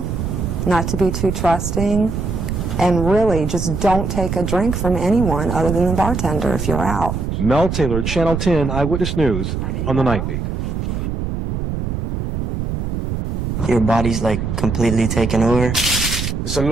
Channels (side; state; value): right; noise; rumble, 3 dB below the sound